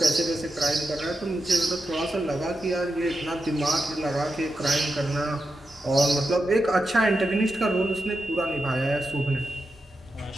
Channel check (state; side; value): normal; both; correlation 0.88